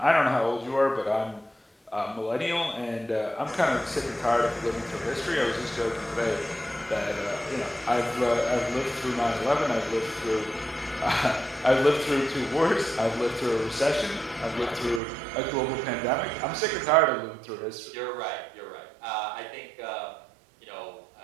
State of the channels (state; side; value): drops out; left; at 15.0 s